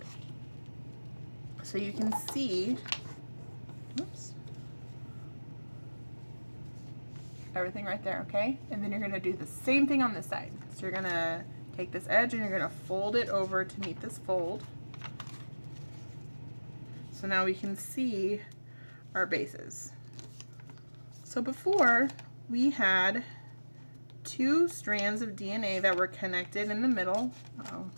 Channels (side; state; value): both; inverted; correlation -1.00